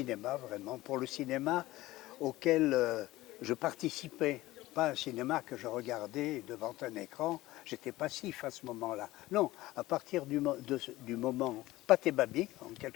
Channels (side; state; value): right; quieter; 17.6 dB